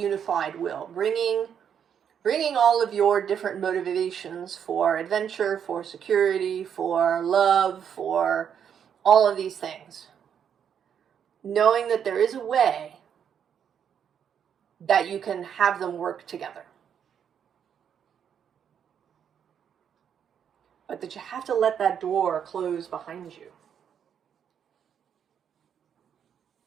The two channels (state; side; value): quieter; left; 8.2 dB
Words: will, bringing all of your different motivations for adventure, for security, for love, for all of these things. Knowing that there is a way that you can have them work together. But that you have to let that door close behind you.